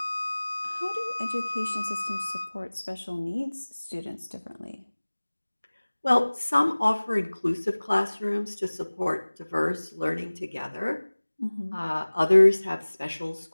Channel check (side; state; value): both; inverted; correlation -1.00